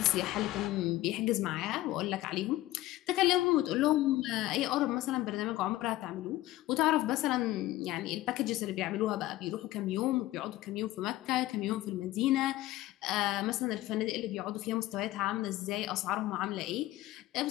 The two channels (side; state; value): right; quieter; 16.4 dB